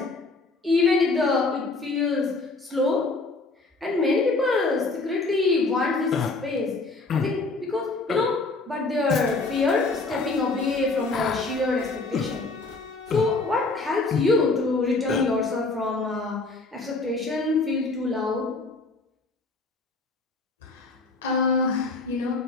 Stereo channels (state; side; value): quieter; right; 3.5 dB